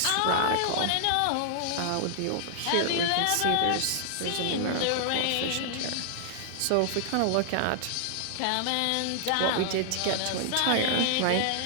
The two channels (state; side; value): different; both; correlation -0.01